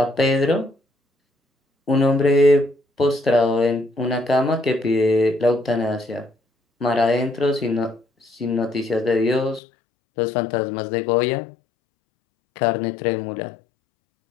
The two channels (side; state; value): right; drops out; at 9.6 s